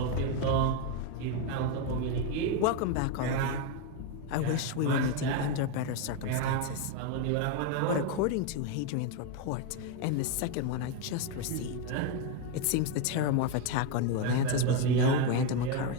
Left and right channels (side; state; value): both; different; correlation 0.02